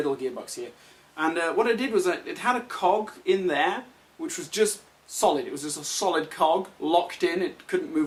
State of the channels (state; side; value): identical; both; correlation 1.00